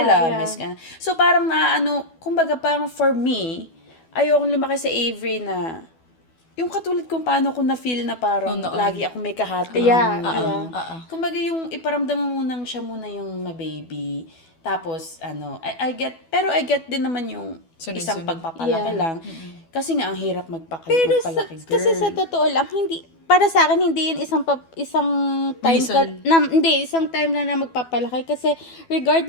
So, parang kumbaga parang for me, ayokong lumaki sa Avery na, yung katulad kung paano ko na-feel na parang lagi ako may kahati. Kumbaga yung iparamdam mo siya muna yung ma-baby. Tapos, I get din naman yung isang pagpapalaki lang. Kasi nga, ang hirap magpalaki, girl. Kasi sa totoo lang, para sa akin, hindi yun isang time isang time na magpapalaki. Kasi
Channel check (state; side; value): late; right; 12 ms